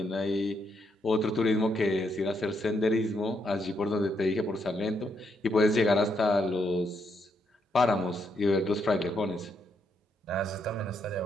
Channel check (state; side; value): normal; both; correlation 0.77